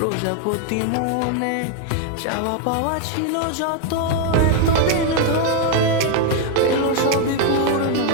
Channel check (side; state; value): both; different; correlation 0.01